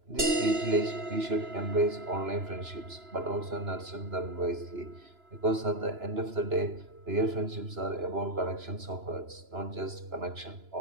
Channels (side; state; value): left; late; 3.0 ms